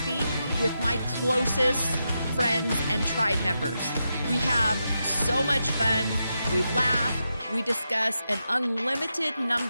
with my closest friends and tribe members. We have so much fun, we laugh, we discuss an unlimited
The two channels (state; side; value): inverted; both; correlation -0.87